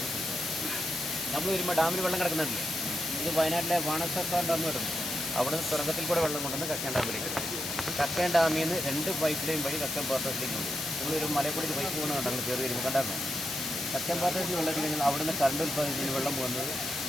നമ്മൾ വരുമ്പോൾ ഡാമിൽ വെള്ളം കിടക്കുന്നുണ്ടല്ലേ, ഇത് വയനാട്ടിലെ വാണസർക്കാർ ഡാം കിടന്നു. അവിടെ നിന്ന് തുറക്കത്തിൽ കൂടെ വെള്ളം കൊണ്ടുവന്ന് കക്കയം ഡാമിലേക്ക്. കക്കയം ഡാമിൽ നിന്ന് 2 പൈപ്പ് ലൈൻ വഴി കക്കയം പാത്രത്തിലേക്ക് ഉണ്ട്. നിങ്ങളൊരു മലയക്കൂടി പൈപ്പ് പോകുന്നത് കണ്ടങ്ങൾ കയറി വരുമ്പോൾ കണ്ടായിരുന്നു. കക്കയം പാത്രത്തിൽ വെള്ളം എത്തിക്കഴിഞ്ഞാൽ അവിടെ നിന്ന് കറണ്ട് ഉൽപ്പാദിപ്പിച്ച് വെള്ളം പോകുന്നത്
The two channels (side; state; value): left; noise; hiss, 4 dB below the sound